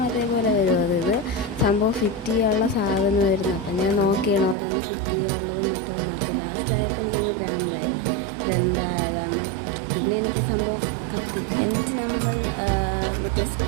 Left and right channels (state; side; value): drops out; left; at 4.5 s